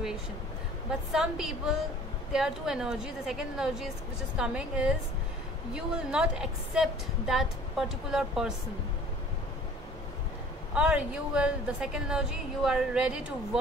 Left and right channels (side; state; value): both; normal; correlation 0.49